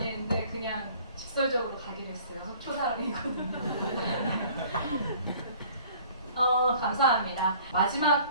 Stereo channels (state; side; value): inverted; both; correlation -0.52